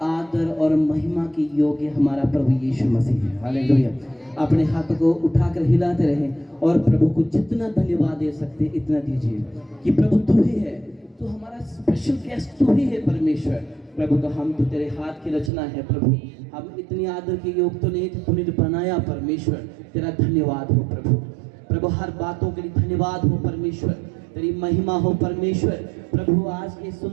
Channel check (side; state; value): left; drops out; at 15.5 s